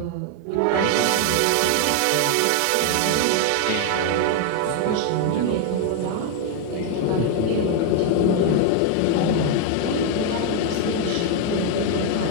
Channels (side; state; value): both; different; correlation 0.00